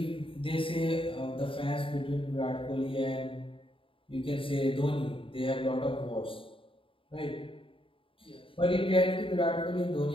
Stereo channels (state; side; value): late; right; 0.26 ms